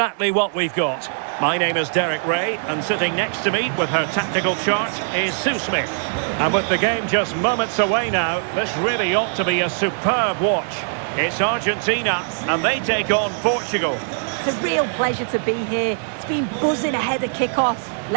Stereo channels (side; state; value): left; silent; digital silence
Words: what we've got. My name is Derek Ray, and sitting next to me with her tactical chart is Sue Smith. And with the game just moments away now, this really ought to be a superb watch. It's Argentina, and they take on Portugal. It's a real pleasure to be here. It's been buzzing ahead of kick-off.